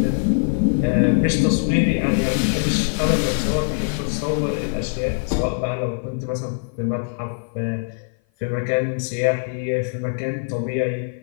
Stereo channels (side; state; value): right; silent; 56 dB below the other